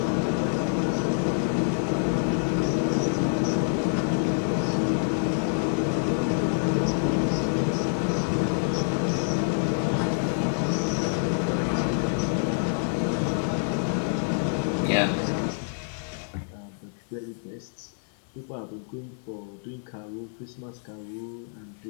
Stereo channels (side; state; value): right; silent; 60 dB below the other